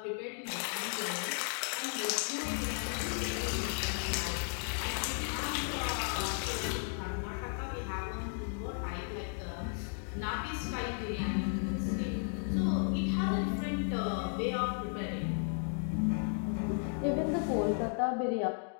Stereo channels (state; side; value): silent; right; 55 dB below the other